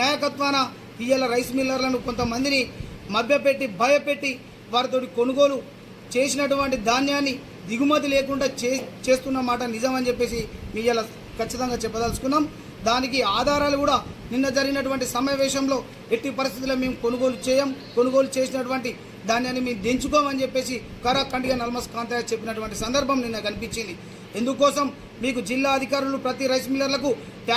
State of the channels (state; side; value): identical; both; correlation 1.00